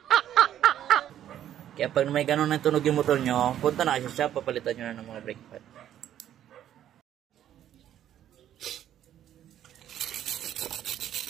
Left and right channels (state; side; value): quieter; left; 11.1 dB